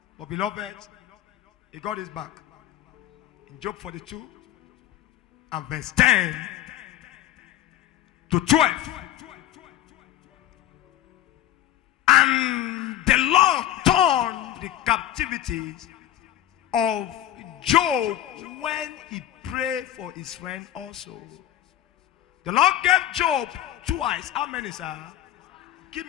But beloved, he got his back. In Job 42 and verse 10 to 12. And the Lord turned the captivities of Job when he prayed for his friend also. The Lord gave Job 2 eyes. How many, sir? Give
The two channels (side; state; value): right; quieter; 12.5 dB